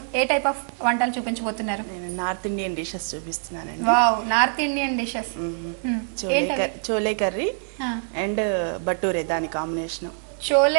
ఏ టైప్ ఆఫ్ వంటలు చూపించబోతున్నారు? నేను నార్త్ ఇండియన్ డిషెస్ చూపిస్తున్నానండి. Wow, north Indian dishes. Chole curry and బటూరే, దాని కాంబినేషన్.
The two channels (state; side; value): silent; left; 62 dB below the other